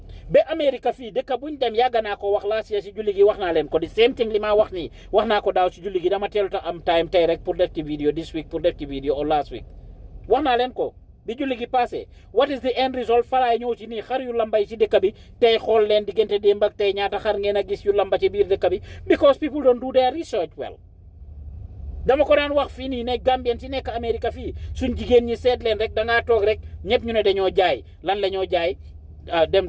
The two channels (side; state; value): both; identical; correlation 1.00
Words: Be America fii dëkk buñ dem yàgg naa ko wax laa si julli gi wax naa leen ko di same thing li ma wax nii wax naa ko daaw si julli gi dama teelu ta am time tey rek pour def ci vidéo this week pour def ci vidéo or last week wax naa leen ko bi julli gi passé what is the end result falaay ñëw ci nii xar yu lambay ci dëkk bi tey xool leen diggante démb ak tey ñaata xar ngeen a gis yu lamba ci biir dëkk bi because people don't do their research well dama ko daan wax fii nii ne Gambien si nekk Amérique fii suñ jigéen ñi seet leen rek da ngaa toog rek ñëpp ñu ne dañoo jaay lan la ñoo jaay